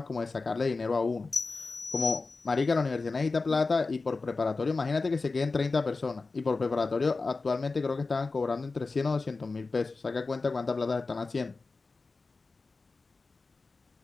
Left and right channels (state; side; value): quieter; right; 3.9 dB